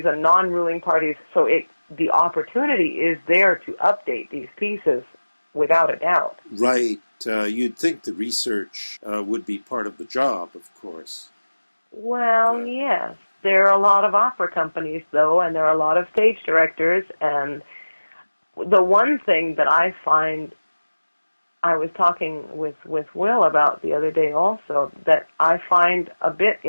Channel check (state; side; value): inverted; both; correlation -1.00